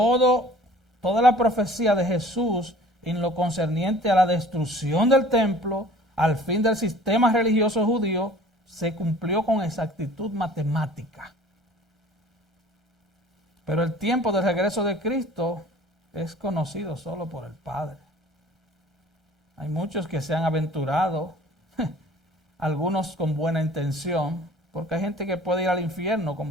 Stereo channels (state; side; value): normal; both; correlation 0.49